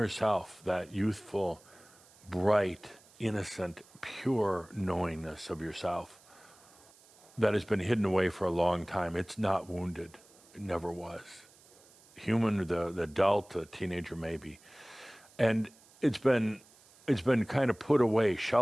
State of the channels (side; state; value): right; noise; hiss, 26 dB below the sound